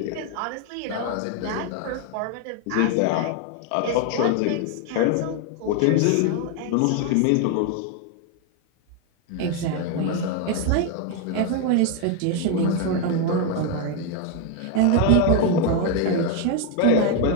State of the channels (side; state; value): both; different; correlation 0.01